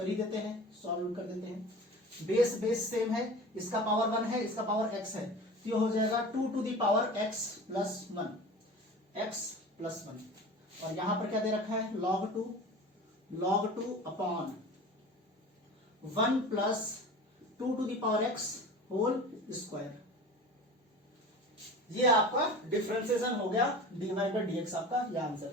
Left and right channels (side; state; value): both; normal; correlation 0.37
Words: ही देते हैं, सॉल्व कर देते हैं। बेस सेम है, इसका पावर 1 है, इसका पावर x है, तो ये हो जाएगा 2 to the power x plus 1, और यहां पर क्या दे रखा है, log 2 upon 1 plus 2 to the power x whole square. ये आपका डिफरेंशिएशन हो गया, dy बाई dx आपका ये आंसर